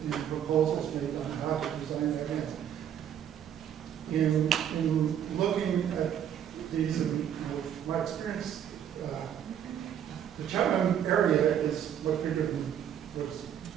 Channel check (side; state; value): left; quieter; 9.5 dB